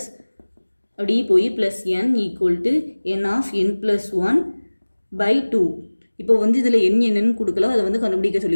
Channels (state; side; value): inverted; both; correlation -1.00